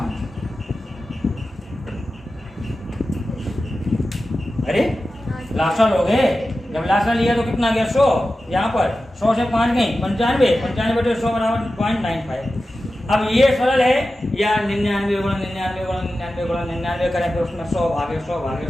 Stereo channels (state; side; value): normal; both; correlation 0.93